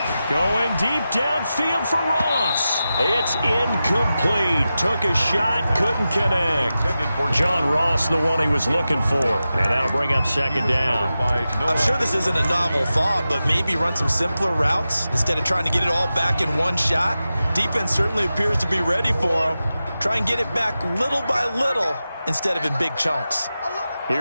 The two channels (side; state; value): both; inverted; correlation -0.93